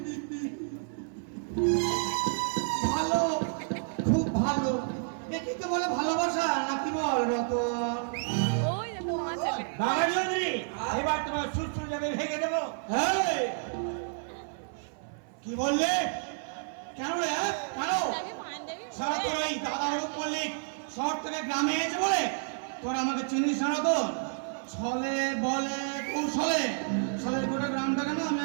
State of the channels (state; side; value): silent; left; 58 dB below the other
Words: ভালো, খুব ভালো। একে তো বলে ভালোবাসা নাকি বল রতন? ওই দেখো মা চলে বাবা চৌধুরী, এবার তোমার সুরসুর যাবে ভেঙে দেবো। কি বললে? কেন রে? কেন? আমি পাঞ্জাবি সারা তোর এই দাদা হরুপ মল্লিক শহর থেকে গ্রামে এসে বলে তোর আমাকে চিনিস না তো? ছলে বলে কৌশলে ছলের গোটা গ্রামটাকে না আমি